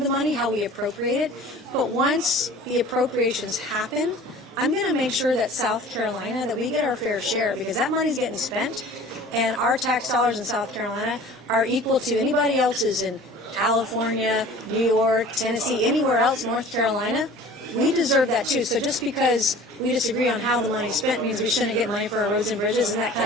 the money, how we appropriate it. But once the appropriations happen, I'm going to make sure that South Carolina, that we get our fair share, because that money's getting spent, and our tax dollars in South Carolina are equal to anybody else's in California, New York, Tennessee, anywhere else, North Carolina. We deserve that too. So just because we disagree on how the money's spent means we shouldn't get money for our roads and bridges. Isn't that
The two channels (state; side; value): normal; both; correlation 0.44